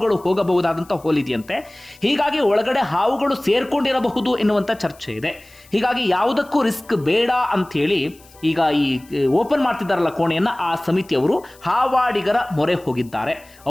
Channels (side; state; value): left; noise; hiss, 26 dB below the sound